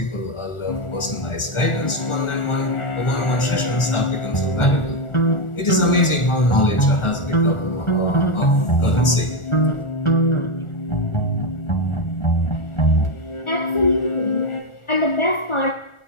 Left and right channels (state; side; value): late; right; 1.4 ms